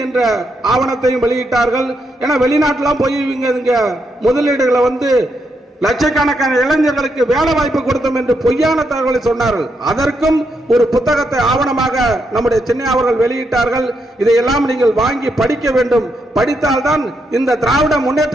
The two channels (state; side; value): normal; both; correlation 0.80